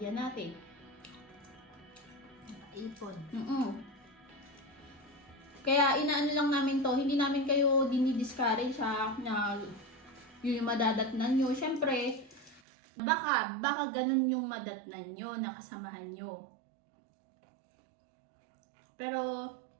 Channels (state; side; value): drops out; left; at 12.6 s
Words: natin. Ipon. Kaya inaano lang namin to, hindi namin kayo dinidiscourage na yun yung madatnan nyo. Siyempre, baka ganun yung madatnan nyo, nakasamahan nyo. Pero,